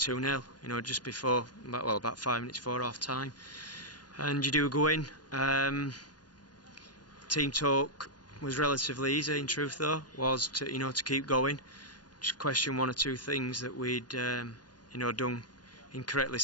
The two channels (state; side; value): late; right; 0.69 ms